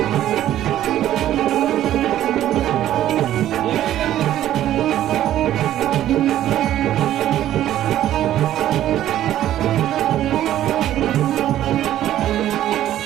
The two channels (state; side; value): quieter; left; 12.5 dB